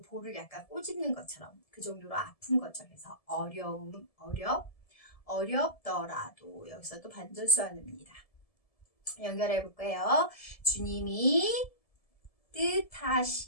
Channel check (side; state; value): right; late; 1.7 ms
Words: 볼을 약간 꼬집는 것처럼 그 정도로 아픈 거죠. 그래서 어려움 어렵더라도 여기서 또 반전수화입니다. 연결해 볼까요? 주님이